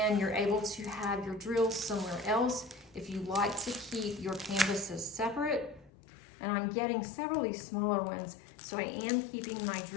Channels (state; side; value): drops out; right; at 5.9 s